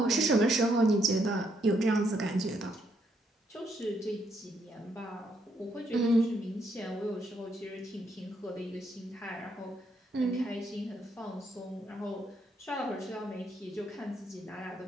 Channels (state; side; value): normal; both; correlation 0.75